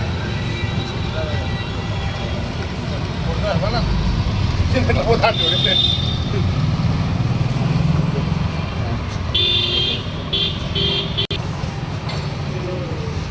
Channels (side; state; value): both; identical; correlation 1.00